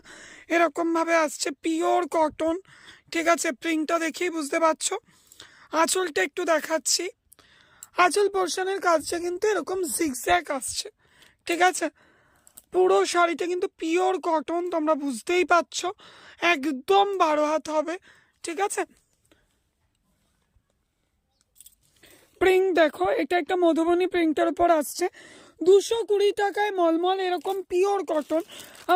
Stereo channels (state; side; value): identical; both; correlation 1.00